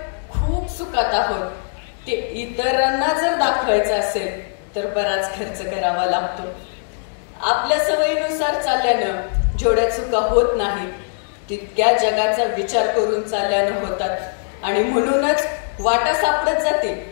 खूप सुखात आहोत ते इतरांना जर दाखवायचं असेल तर बराच खर्च करावा लागतो. आपल्या सवयीनुसार चालल्यानं जेवढ्या चुका होत नाही तितक्या जगाचा विचार करून चालल्यानं होतात आणि म्हणूनच वाटा सापडत जातील,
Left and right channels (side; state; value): right; silent; 65 dB below the other